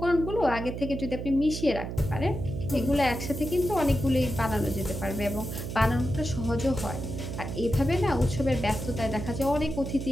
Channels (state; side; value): noise; right; hum, 6 dB below the sound